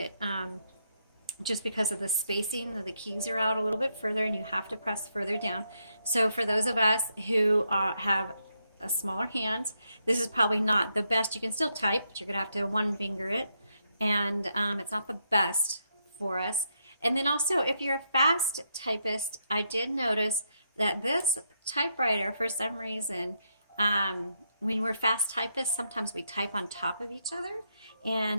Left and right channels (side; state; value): both; inverted; correlation -0.79